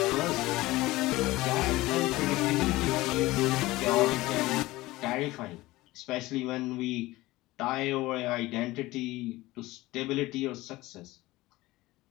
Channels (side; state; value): right; quieter; 18.9 dB